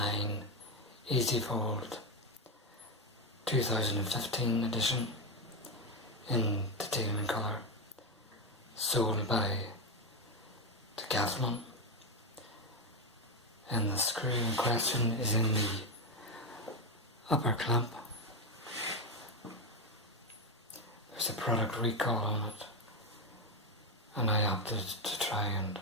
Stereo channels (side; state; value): both; normal; correlation 0.08